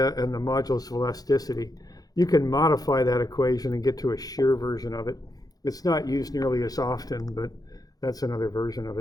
and the modulus of elasticity, you can modify that equation and get to a shear version of it. It's not used nearly as often, but that's another version of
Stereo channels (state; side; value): late; right; 0.18 ms